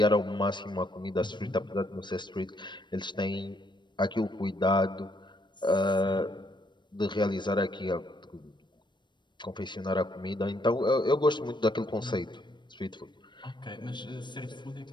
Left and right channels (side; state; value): right; late; 0.22 ms